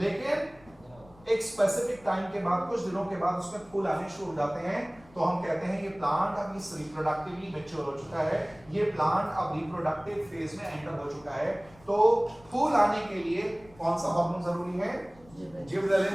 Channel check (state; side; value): noise; left; rumble, 25 dB below the sound